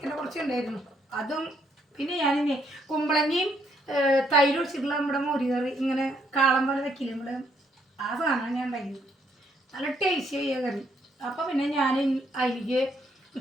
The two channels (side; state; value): both; normal; correlation 0.71